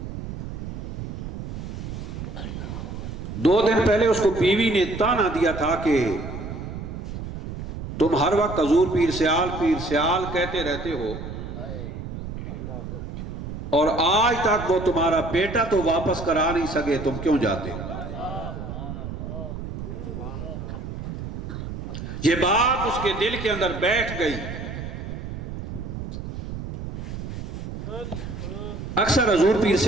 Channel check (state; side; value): noise; right; rumble, 7 dB below the sound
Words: दो दिन पहले उसको बीवी ने ताना दिया था कि तुम हर वक्त हजूर पीर सियाल कहते रहते हो, और आज तक वो तुम्हारा बेटा तो वापस करा नहीं सके, तुम क्यों जाते हो? ये बात उसके दिल के अंदर बैठ गई। अक्सर हजूर पीर